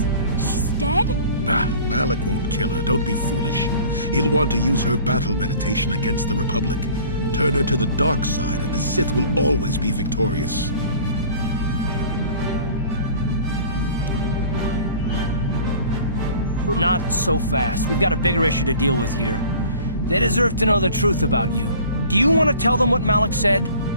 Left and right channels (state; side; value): inverted; both; correlation -0.46